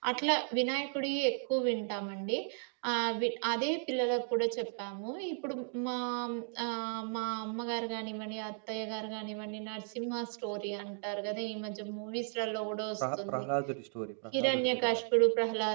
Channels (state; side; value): silent; left; 54 dB below the other